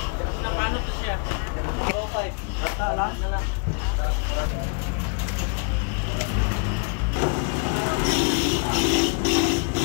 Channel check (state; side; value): quieter; right; 36.7 dB